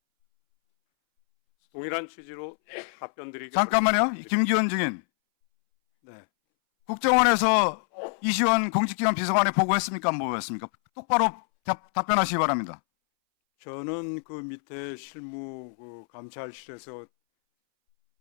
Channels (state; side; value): silent; right; 61 dB below the other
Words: 동일한 취지로 답변드리기 잠깐만요. 김기현 증인. 네. 국정원에서 이시원 공직기관 비서관에 보고했습니까? 안 보고했습니까? 똑바로 답변하시기 바랍니다. 저는 그 밑에 실무 그 감찰실에서